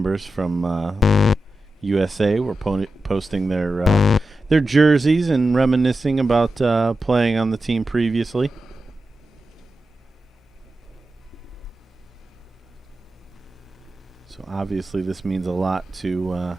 from USA were posting their jerseys and reminiscing about playing on the team previously. So obviously this means a lot to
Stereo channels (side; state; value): both; normal; correlation 0.91